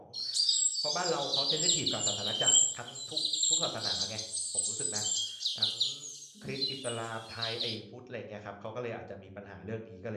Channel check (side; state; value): both; identical; correlation 1.00